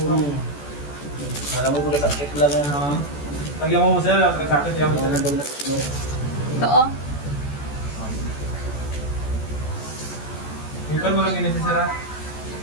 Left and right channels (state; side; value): late; right; 14 ms